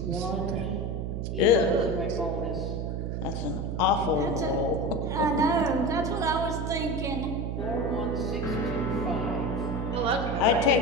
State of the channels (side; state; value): right; noise; hum, 3 dB below the sound